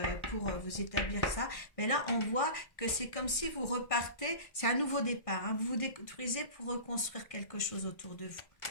pour vous établir ça. Mais là, on voit que c'est comme si vous repartez, c'est un nouveau départ, hein. Vous vous détruisez pour reconstruire quelque chose autour de vous.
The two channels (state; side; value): late; right; 1.6 ms